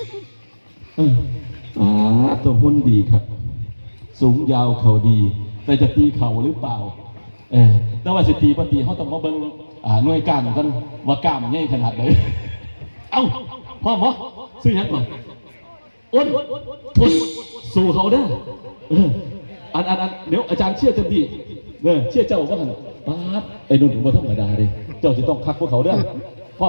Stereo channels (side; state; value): both; inverted; correlation -1.00